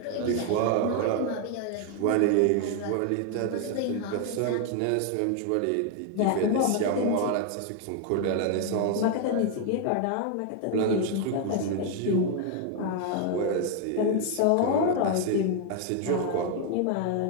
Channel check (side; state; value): both; different; correlation 0.01